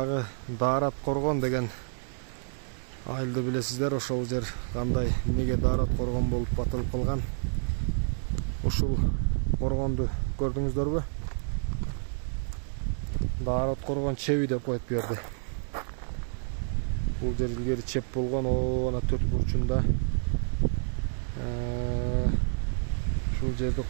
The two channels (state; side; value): silent; left; 58 dB below the other